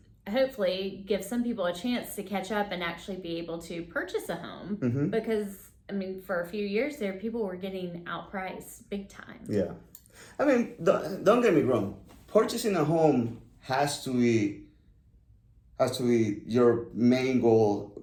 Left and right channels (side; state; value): both; identical; correlation 1.00